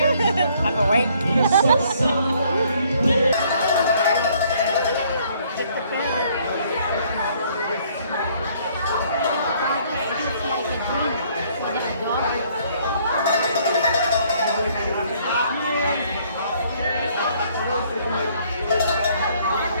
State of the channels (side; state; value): both; inverted; correlation -0.63